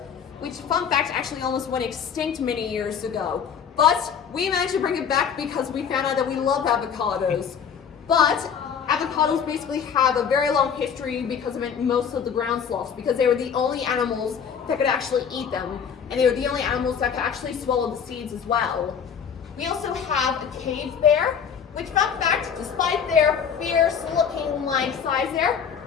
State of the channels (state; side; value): quieter; right; 7.3 dB